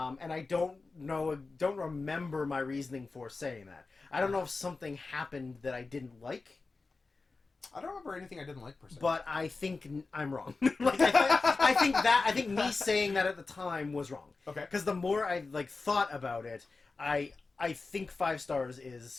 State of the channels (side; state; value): right; quieter; 3.9 dB